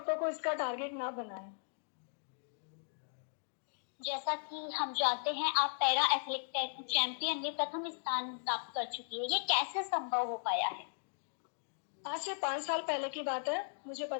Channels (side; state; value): right; silent; digital silence